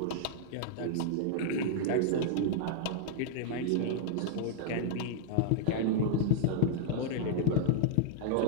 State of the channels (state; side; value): different; both; correlation -0.01